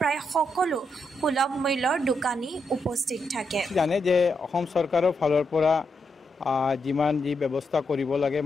সকলো সুলভ মূল্যৰ দোকানী উপস্থিত থাকে। জানে যে অসম চৰকাৰৰ ফালৰ পৰা যিমান যি ব্যৱস্থা কৰিব লাগে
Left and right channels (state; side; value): normal; both; correlation 0.82